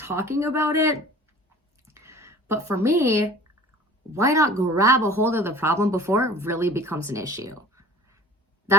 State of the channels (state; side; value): normal; both; correlation 0.44